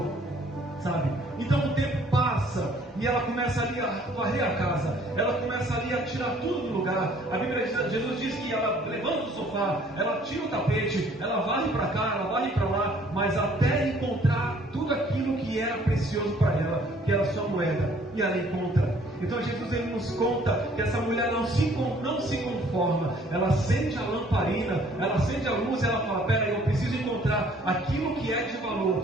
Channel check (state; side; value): normal; both; correlation 0.58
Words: sabe? Então o tempo passa e ela começa ali a varrer a casa, ela começa ali a tirar tudo do lugar. A Bíblia diz, Jesus diz que ela levanta o sofá, ela tira o tapete, ela varre para cá, ela varre para lá, mas até encontrar tudo aquilo que era precioso para ela, que era a sua moeda, e ela encontra. Então Jesus, ele nos conta que essa mulher não se conforma, ela acende a lamparina, ela acende a luz e ela fala: pera aí, eu preciso encontrar aquilo que é de